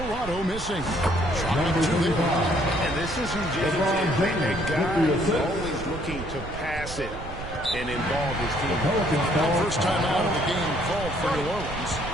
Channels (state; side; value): noise; right; rumble, 11 dB below the sound